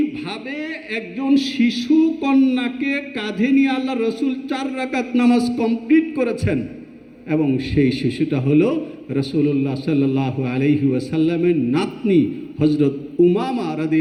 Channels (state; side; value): identical; both; correlation 1.00